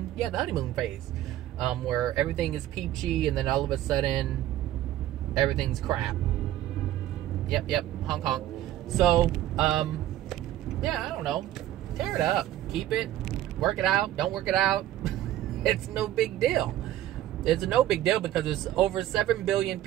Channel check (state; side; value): quieter; left; 13.5 dB